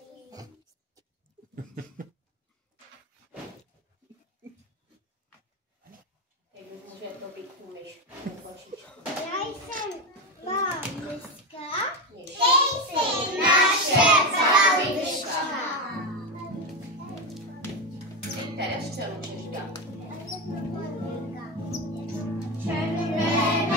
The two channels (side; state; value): both; normal; correlation 0.16